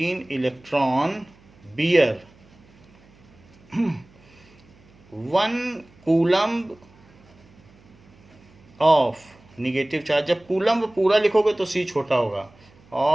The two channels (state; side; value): noise; right; hum, 28 dB below the sound